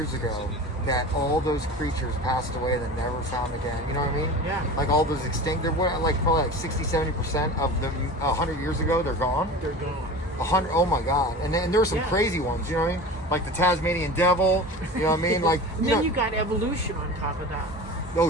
ago that all those creatures passed away that never found again? You know what I mean? Yeah. Like all those extinct, they're probably like 60-70% of them 100 years ago, they're gone. They're gone. 100, oh my God. And there were some Yeah. crazy ones, you know what I mean? Like the Tasmanian devil, you know what I mean? Like, And you then know, you got evolution on top of that.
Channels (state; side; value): normal; both; correlation 0.33